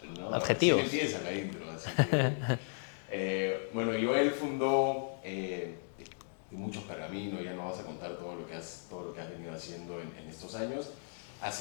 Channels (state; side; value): silent; right; digital silence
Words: No, recién Adjetivos. empieza la intro, así que... bueno, Joel fundó de muchos pergaminos, ya no vas a contar todo lo que has venido haciendo en estos años.